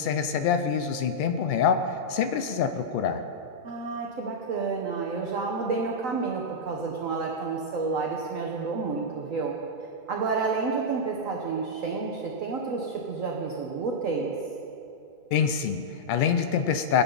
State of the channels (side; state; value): right; late; 2.3 ms